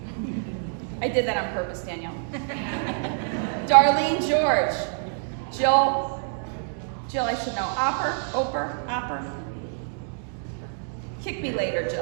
I did that on purpose, Danielle. Darlene George, Jill, I should know, Opper. Kick me later,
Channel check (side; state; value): left; silent; 59 dB below the other